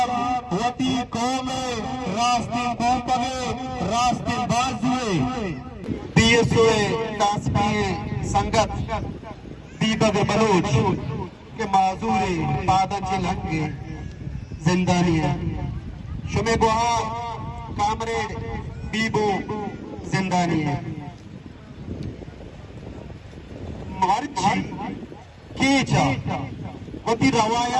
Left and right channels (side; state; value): both; identical; correlation 1.00